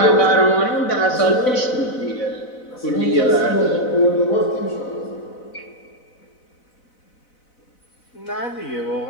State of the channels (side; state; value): right; late; 4.0 ms